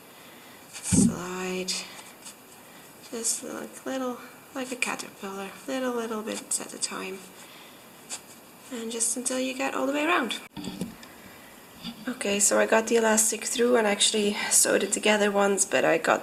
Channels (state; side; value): identical; both; correlation 1.00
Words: slide, just like a caterpillar, little bits at a time, and just until you get all the way around. Okay, so I got the elastic through and actually sewed it together once, but I